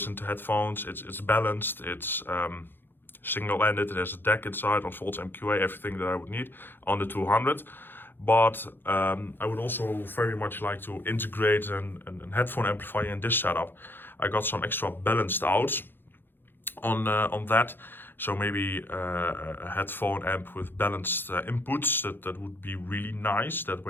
to headphones. It's balanced, it's single-ended, it has a deck inside, unfolds MQA, everything that I would need on the 200. But I would also very much like to integrate an headphone amplifier in this setup. I got some extra balanced outs on that. So maybe a headphone amp with balanced inputs, that would be really nice. That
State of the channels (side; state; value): right; late; 0.099 ms